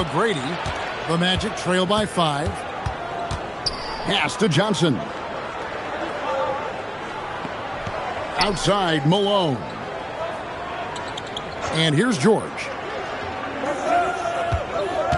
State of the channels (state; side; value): identical; both; correlation 1.00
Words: The Magic trail by 5. Pass to Johnson. Outside, Malone. And here's George.